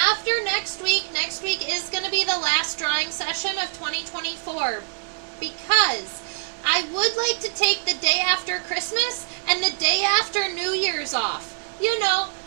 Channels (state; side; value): silent; left; digital silence